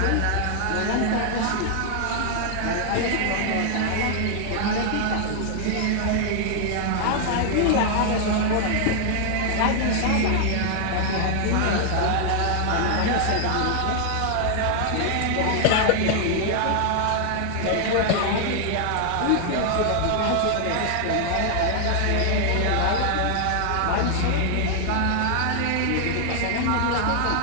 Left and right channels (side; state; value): both; different; correlation 0.00